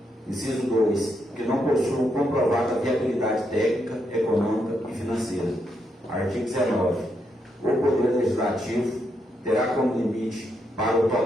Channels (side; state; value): both; normal; correlation 0.80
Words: Inciso 2. Que não possuam comprovada viabilidade técnica, econômica e financeira. Artigo 19. O Poder Legislativo terá como limite para o